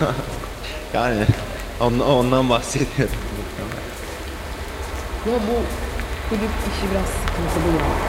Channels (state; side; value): identical; both; correlation 1.00